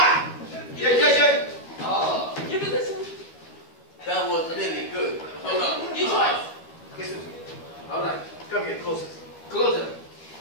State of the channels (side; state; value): right; late; 12 ms